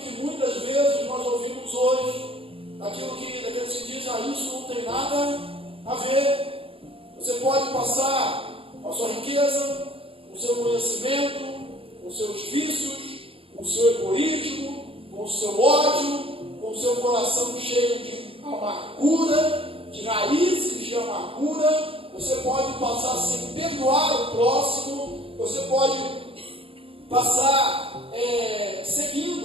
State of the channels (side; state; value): left; late; 0.27 ms